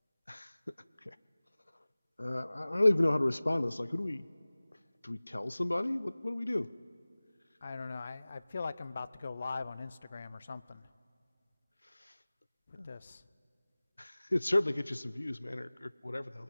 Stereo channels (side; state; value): both; inverted; correlation -0.99